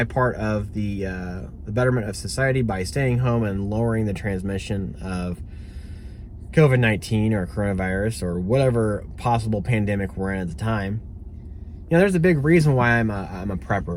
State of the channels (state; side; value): identical; both; correlation 1.00